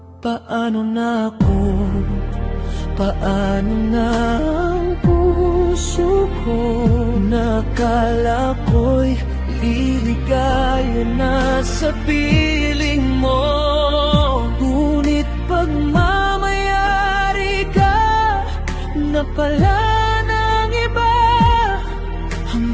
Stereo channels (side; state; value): both; identical; correlation 1.00